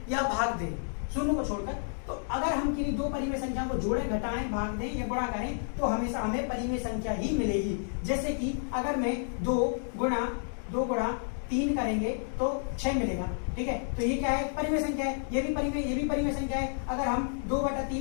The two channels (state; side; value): silent; right; digital silence